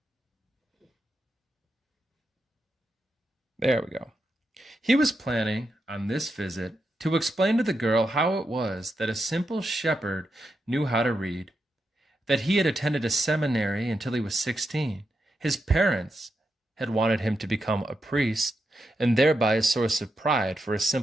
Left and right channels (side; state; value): both; normal; correlation 0.86